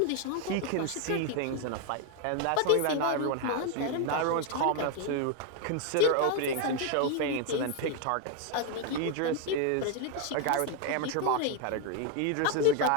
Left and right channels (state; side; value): different; both; correlation 0.01